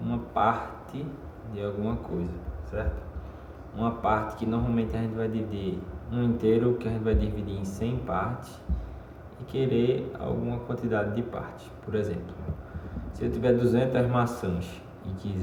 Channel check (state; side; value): identical; both; correlation 1.00